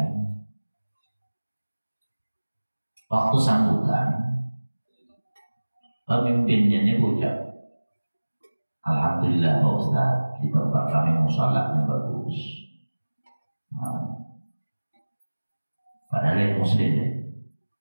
waktu sambutan, pemimpinnya ini ucap, alhamdulillah Pak Ustaz, di tempat kami musolahnya bagus. Padahal yang muslim ya.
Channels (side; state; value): both; inverted; correlation -1.00